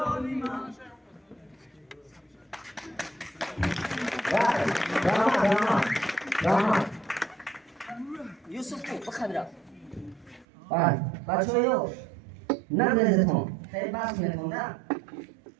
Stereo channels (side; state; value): left; drops out; at 10.5 s